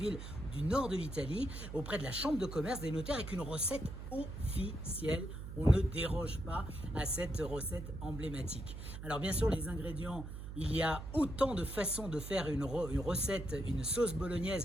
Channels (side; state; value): right; noise; hum, 9 dB below the sound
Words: du nord de l'Italie, auprès de la chambre de commerce des notaires avec une recette officielle. On ne déroge pas à cette recette emblématique. Alors bien sûr les ingrédients, il y a autant de façons de faire une recette, une sauce